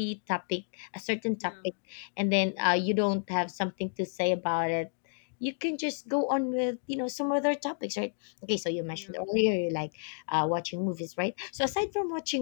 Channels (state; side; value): silent; right; digital silence